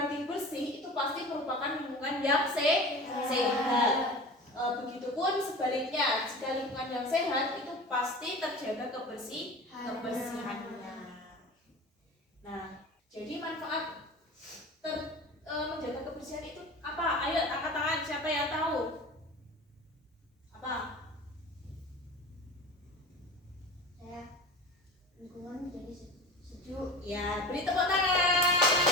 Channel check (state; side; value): normal; both; correlation 0.34